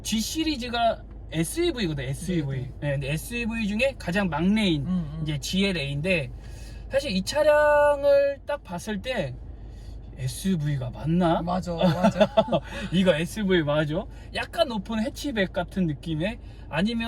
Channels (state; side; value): identical; both; correlation 1.00